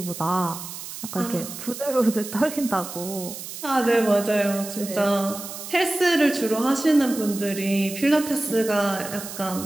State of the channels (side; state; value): right; noise; hiss, 10 dB below the sound